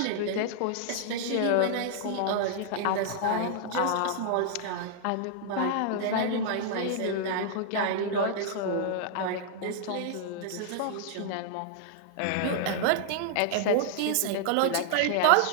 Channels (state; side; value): different; both; correlation -0.01